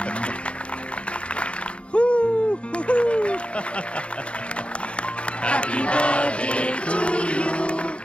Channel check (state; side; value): late; right; 0.059 ms